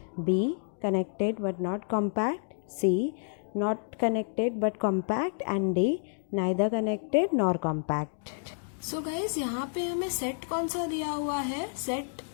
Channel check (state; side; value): silent; right; digital silence